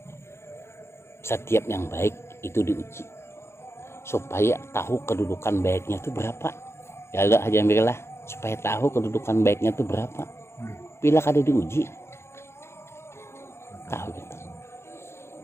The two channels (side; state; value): right; late; 0.13 ms